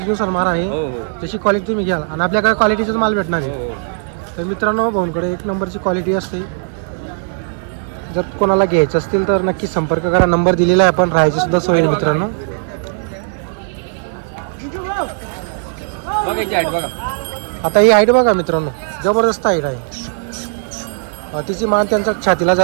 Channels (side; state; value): left; silent; 68 dB below the other